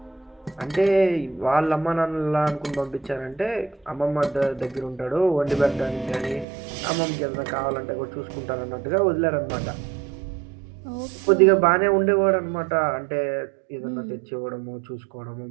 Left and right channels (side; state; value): left; drops out; at 6.5 s